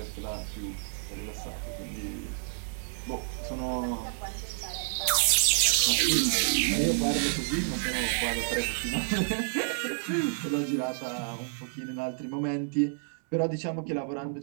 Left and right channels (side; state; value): left; silent; digital silence